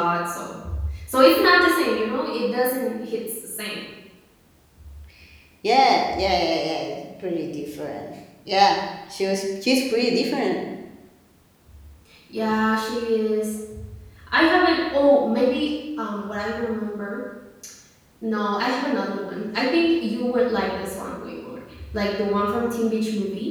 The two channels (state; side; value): identical; both; correlation 1.00